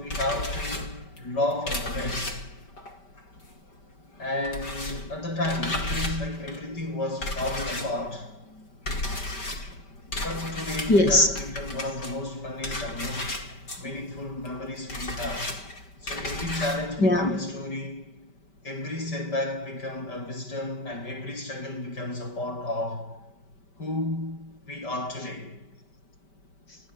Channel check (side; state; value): right; late; 5.2 ms